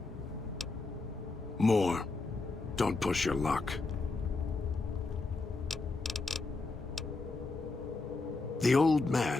More. Don't push your luck. The old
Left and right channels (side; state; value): right; quieter; 3.6 dB